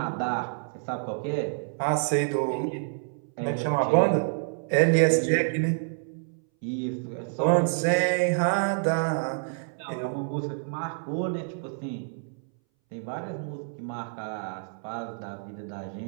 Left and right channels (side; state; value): left; silent; 59 dB below the other